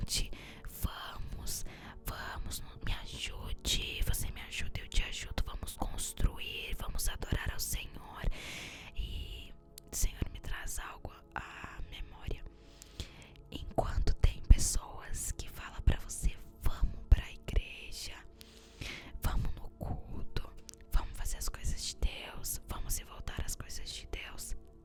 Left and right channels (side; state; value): both; identical; correlation 1.00